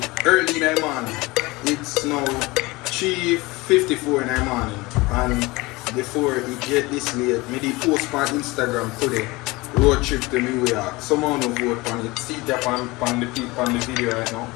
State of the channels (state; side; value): quieter; right; 22.5 dB